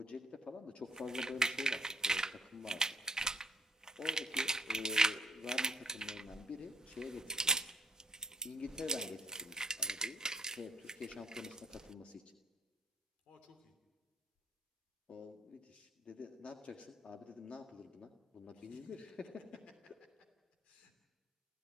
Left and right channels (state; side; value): normal; both; correlation 0.64